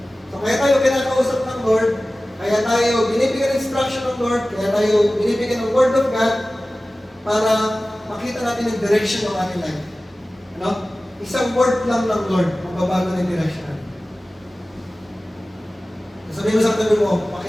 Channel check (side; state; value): both; normal; correlation 0.97